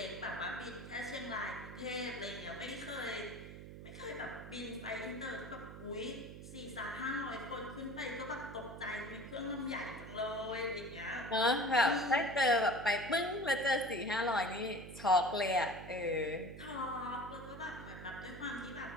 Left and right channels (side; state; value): right; noise; hum, 12 dB below the sound